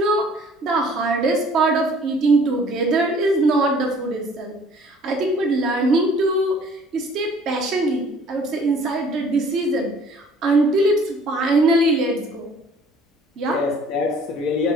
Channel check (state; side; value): normal; both; correlation 0.54